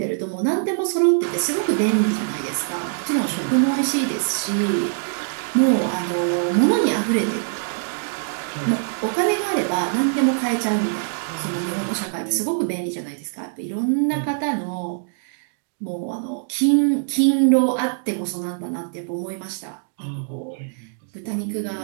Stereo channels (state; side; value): silent; left; digital silence